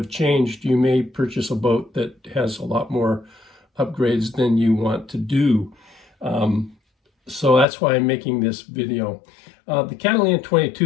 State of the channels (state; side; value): drops out; right; at 7.7 s